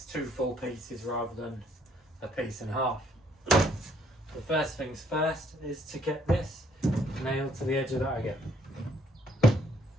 two full pieces rather than a piece and a half. The first things first is to get this nailed to the edge of that again.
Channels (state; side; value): normal; both; correlation 0.66